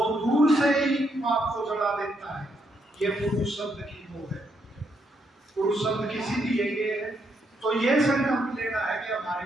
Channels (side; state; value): both; normal; correlation 0.77